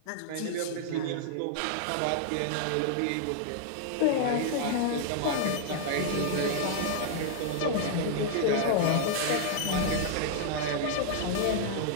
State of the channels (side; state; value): both; different; correlation -0.01